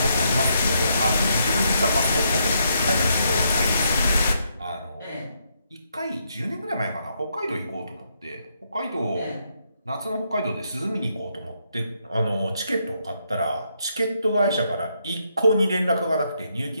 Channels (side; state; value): both; inverted; correlation -0.77